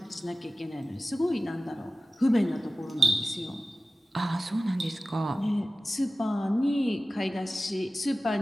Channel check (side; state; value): both; normal; correlation 0.95